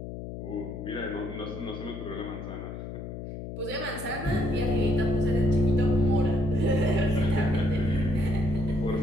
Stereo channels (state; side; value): noise; left; hum, 9 dB below the sound